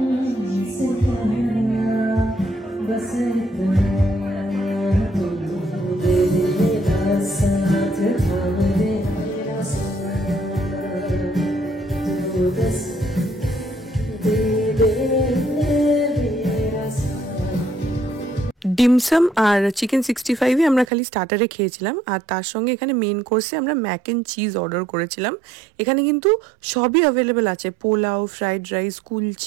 ডিমসাম আর চিকেন 65 আমরা খালি স্টার্টারে খেয়েছিলাম, আর তার সঙ্গে এখানে মেন কোর্সে আমরা ম্যাক অ্যান্ড চিজ অর্ডার করেছিলাম। এখানে কিন্তু সবই অ্যাভেলেবেল আছে, পোলাও, ফ্রাইড রাইস,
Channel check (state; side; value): drops out; left; at 20.9 s